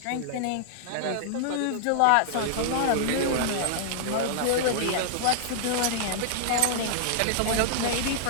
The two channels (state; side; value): different; both; correlation -0.01